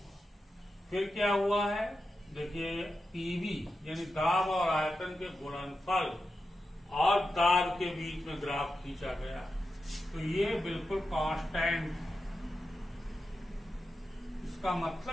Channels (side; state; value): both; normal; correlation 0.90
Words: फिर क्या हुआ है, देखिए पीवी यानी दाब और आयतन के गुणनफल और दाब के बीच में ग्राफ खींचा गया, तो ये बिल्कुल कांस्टेंट। इसका